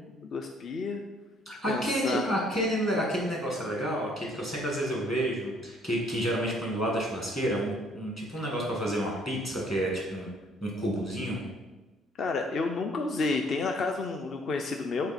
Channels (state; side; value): normal; both; correlation 0.62